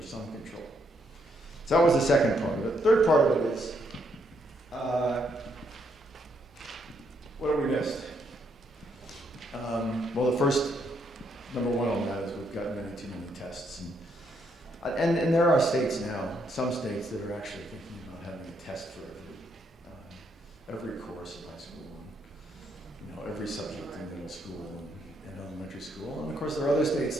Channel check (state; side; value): normal; both; correlation 0.74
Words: some control. So that was the second part of it. The third part of it is, what have we missed? Well, the first, number one on that is we've got too many tests. And there are states now, some states that are actually thinking about having a test for every course in high school, and, every subject in middle school and elementary school. And of course, there are other states